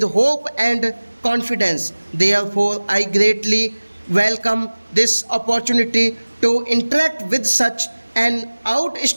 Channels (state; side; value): inverted; both; correlation -1.00